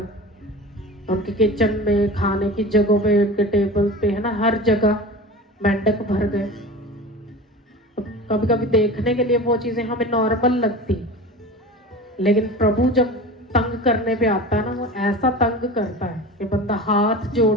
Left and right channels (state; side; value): normal; both; correlation 0.34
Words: उनके किचन में, खाने की जगहों पे, उनके टेबल पे, है ना, हर जगह मेंढक भर गए। तो कभी कभी देखने के लिए वो चीजें हमें नॉर्मल लगती, लेकिन प्रभु जब तंग करने पे आता है ना, वो ऐसा तंग करता है कि बंदा हाथ